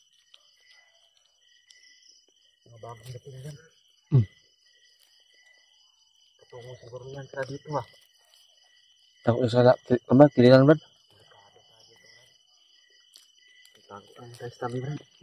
Mga bagong dating yan. Patungo siguro yan sila dito ha. Takot sa kililan Brad? Takot ang tayo sa tabi, Brad.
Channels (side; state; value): both; identical; correlation 1.00